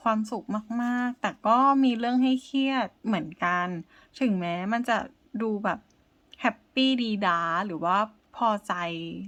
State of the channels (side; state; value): both; identical; correlation 1.00